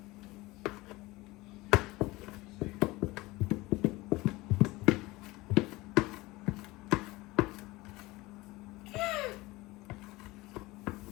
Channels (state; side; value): quieter; right; 20.7 dB